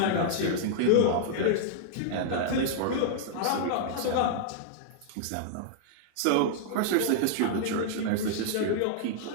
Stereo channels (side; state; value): both; different; correlation -0.01